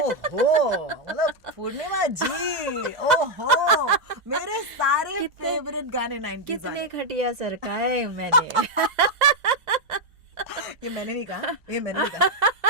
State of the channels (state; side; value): normal; both; correlation 0.01